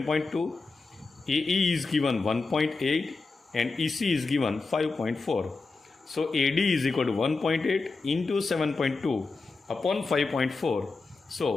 AE is given 1.8 and EC is given 5.4. So AD is equal to 1.8 into 7.2 upon 5.4.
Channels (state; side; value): quieter; right; 4.0 dB